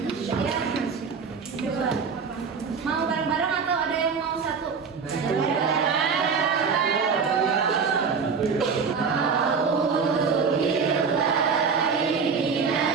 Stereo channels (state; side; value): quieter; left; 5.6 dB